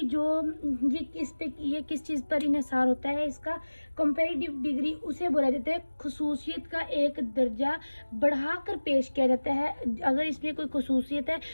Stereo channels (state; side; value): inverted; both; correlation -1.00